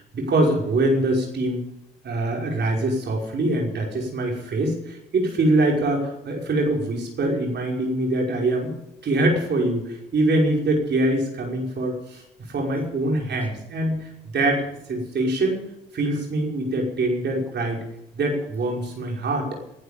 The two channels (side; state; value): both; normal; correlation 0.57